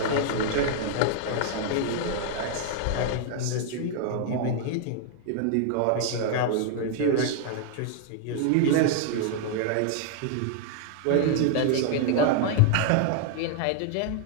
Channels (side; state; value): both; different; correlation 0.00